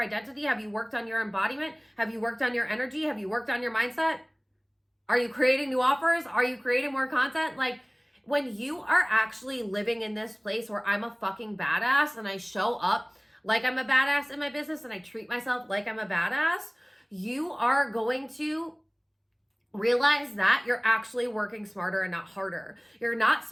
identity? Have you worked on your embodiment? Have you worked on your energy? Have you worked on your mindset? Are you creating new offers? Are you creating more content? Like, when you are actually living in this place where I'm a fucking badass and I show up like I'm a badass in my business and I treat myself like I'm a badass, you are going to realize that you're actually working smarter and not harder. You're not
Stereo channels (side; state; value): both; identical; correlation 1.00